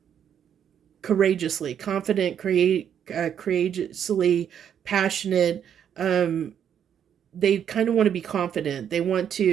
courageously, confident, courageously, passionate. They kind of want to be confident. They want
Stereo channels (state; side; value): quieter; left; 8.9 dB